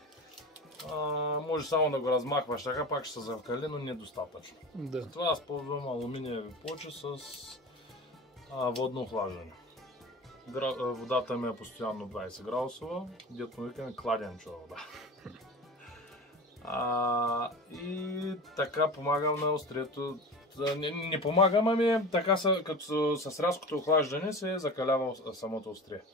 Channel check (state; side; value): normal; both; correlation 0.32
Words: може само да го размахваш така, пак ще се закали, но недостатъчно. Да. Затова аз ползвам алуминиеви плочи с водно охлаждане. Водата ми е постоянно 20 градусова, дето му викаме кладенчева вода. И така помагам на острието. Не помагам, ами така като с рязкото охлаждане се закалява самото острие.